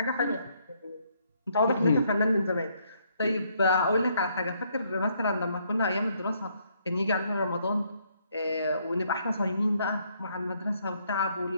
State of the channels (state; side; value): inverted; both; correlation -0.71